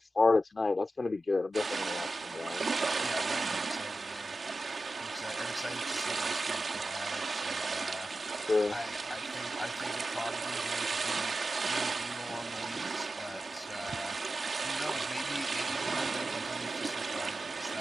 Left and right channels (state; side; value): normal; both; correlation 0.93